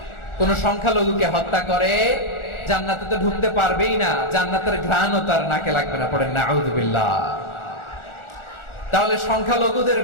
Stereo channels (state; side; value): late; right; 1.4 ms